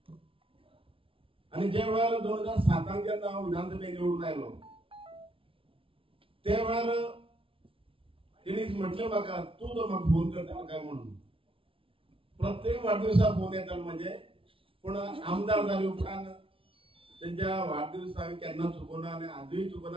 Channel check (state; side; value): late; left; 0.26 ms